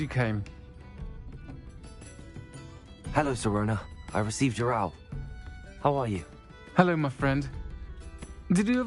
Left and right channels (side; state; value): both; identical; correlation 1.00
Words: came. Hello, Sirona. I received your owl. How are you? Hello, my friend. Did you